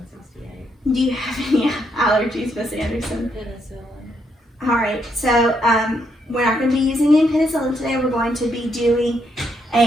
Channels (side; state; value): both; normal; correlation 0.76